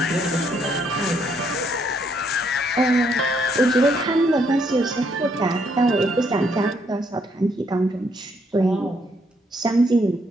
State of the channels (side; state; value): both; normal; correlation 0.72